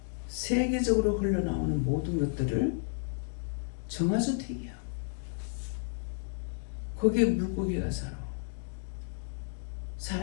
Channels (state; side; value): silent; right; digital silence